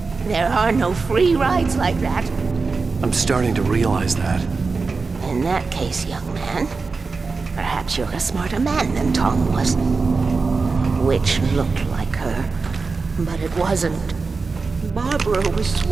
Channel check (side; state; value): left; quieter; 4.3 dB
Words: There are no free rides like that. I'm starting to realize that. In that case, young man, perhaps you're a smarter man than Tom was. Which looked like her, but it wasn't. Barbara was